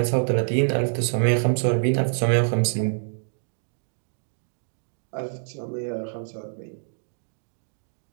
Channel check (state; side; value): silent; left; digital silence